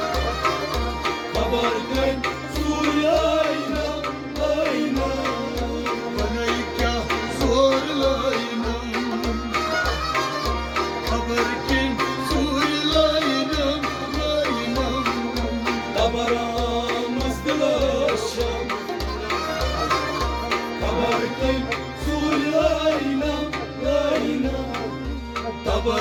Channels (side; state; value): both; identical; correlation 1.00